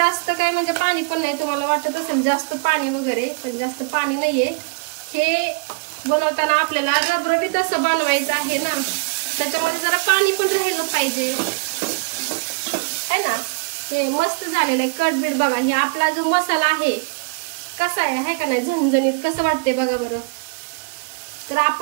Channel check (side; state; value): left; quieter; 32.0 dB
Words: काय म्हणजे पाणी पण नाही. तुम्हाला वाटत असेल जास्त पाणी वगैरे, पण जास्त पाणी नाहीये. हे बनवताना आपल्याला रबरबीत असं बनवायचं आहे ना, त्याच्यामध्ये जरा पाणी पण राहिलं पाहिजे है ना. हे मस्त झालेलं आहे कटबीट. बघा हे आपला जो मसाला आहे कसा आहे का नाही, झणझणीत कसं वाटते बघा बरं. तर